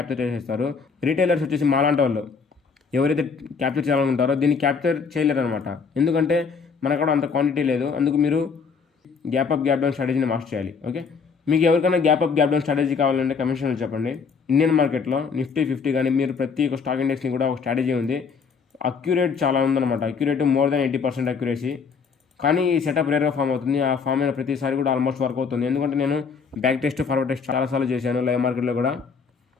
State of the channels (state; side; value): quieter; right; 5.5 dB